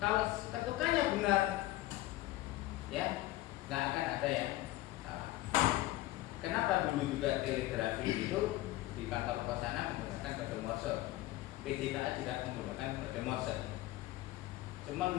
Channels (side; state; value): right; quieter; 16.9 dB